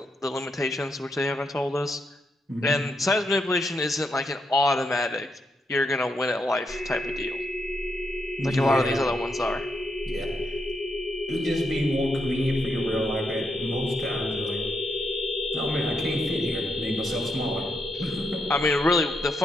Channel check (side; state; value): both; normal; correlation 0.81